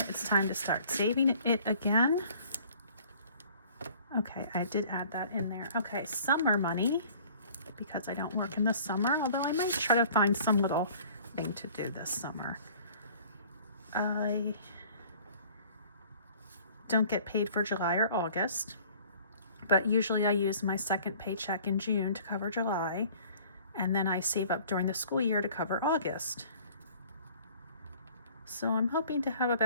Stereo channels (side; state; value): both; inverted; correlation -0.51